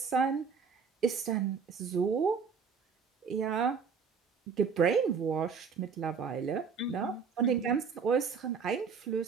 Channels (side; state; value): left; quieter; 5.9 dB